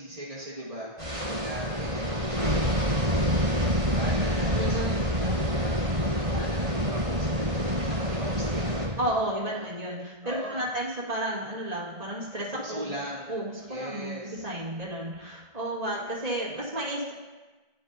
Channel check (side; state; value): left; late; 1.5 ms